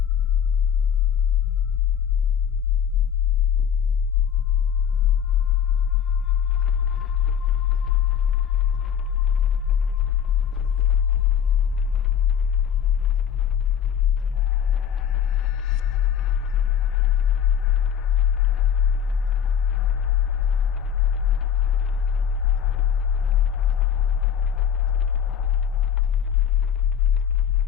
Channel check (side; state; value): right; quieter; 8.5 dB